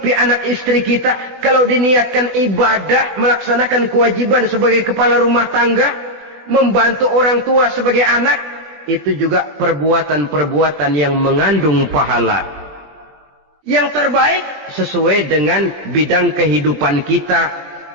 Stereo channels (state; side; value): late; left; 20 ms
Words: anak istri kita. Kalau diniatkan ibadah, melaksanakan kewajiban sebagai kepala rumah tangga, membantu orang tua sebagai anak, itu juga perbuatan-perbuatan yang mengandung pahala. Yang terbaik sesuai dengan bidang kehidupan kita.